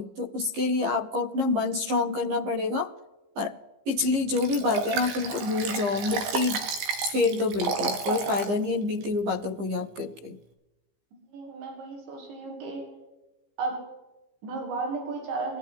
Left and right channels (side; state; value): left; late; 15 ms